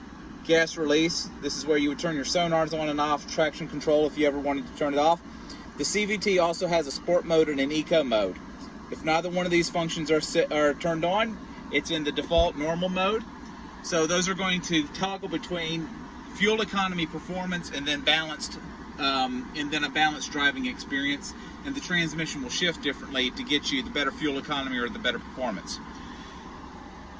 Gas release, this is where you would turn your sonars on and off, traction control if you ever wanted to turn it off. The CVT also has a sport mode and an eco mode. If neither one of these functions are turned on, it's in the default normal mode. So those are going to toggle between fuel economy, performance, and then a balanced driving experience. And the transmission will shift differently to get you the better fuel economy or the better performance.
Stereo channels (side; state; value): both; identical; correlation 1.00